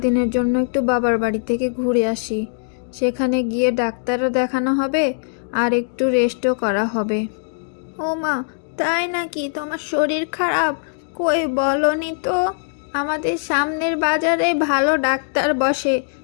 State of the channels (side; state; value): right; silent; digital silence